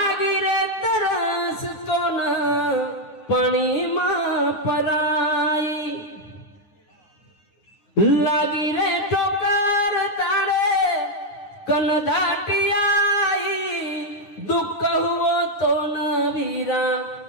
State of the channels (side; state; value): right; late; 9.7 ms